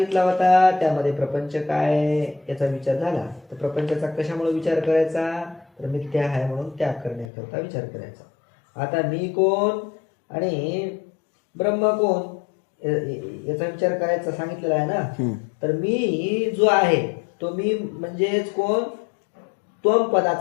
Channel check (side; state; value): right; drops out; at 7.3 s